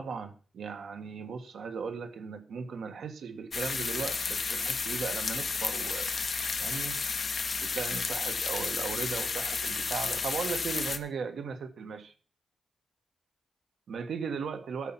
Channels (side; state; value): both; normal; correlation 0.84